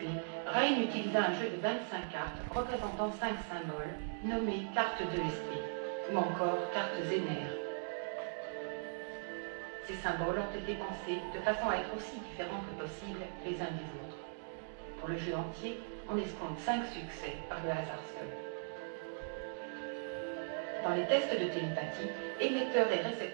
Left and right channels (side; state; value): left; silent; digital silence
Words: Ryan utilisa un jeu de 25 cartes représentant 5 symboles nommés cartes d'ESP ou encore cartes Zener. Ces symboles ont été pensés de façon à être aussi différents que possible les uns des autres. Pour le jeu entier, on escompte 5 succès par le hasard seul. Dans les tests de télépathie, émetteurs et